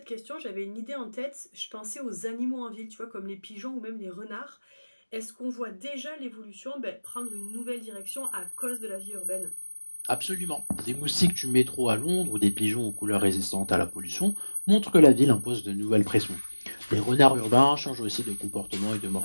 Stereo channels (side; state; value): both; inverted; correlation -1.00